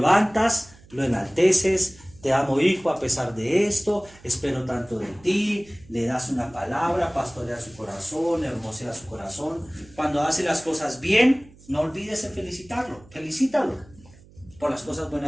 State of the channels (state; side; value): noise; right; hum, 24 dB below the sound